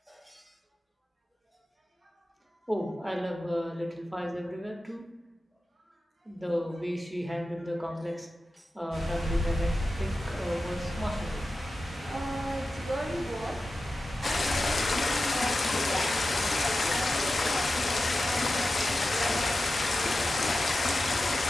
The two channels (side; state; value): both; normal; correlation 0.93